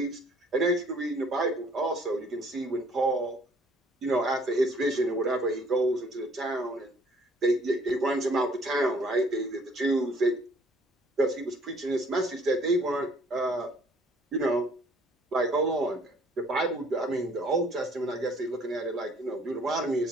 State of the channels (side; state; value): both; normal; correlation 0.59